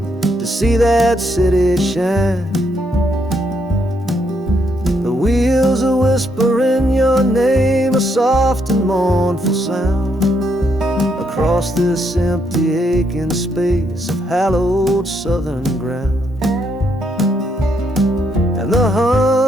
to see that city shine. The wheels are whispering your name, a soft and mournful sound, across this empty aching space of hallowed southern ground. And the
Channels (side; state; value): both; normal; correlation 0.75